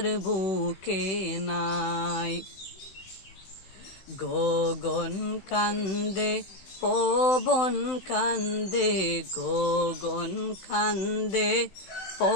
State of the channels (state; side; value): late; right; 16 ms